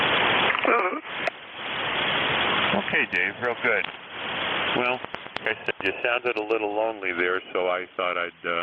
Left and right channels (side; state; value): both; identical; correlation 1.00